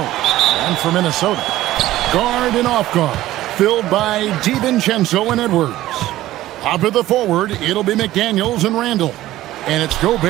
And for Minnesota, guard and off guard, filled by DiVincenzo and Edwards. Up at the forward, it'll be McDaniels and Randall. And it's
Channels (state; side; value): quieter; left; 15.2 dB